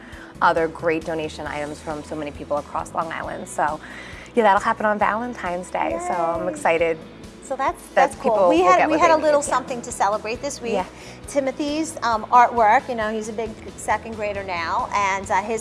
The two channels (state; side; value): identical; both; correlation 1.00